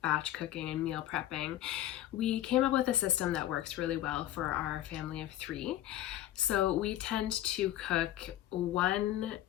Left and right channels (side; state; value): right; quieter; 13.4 dB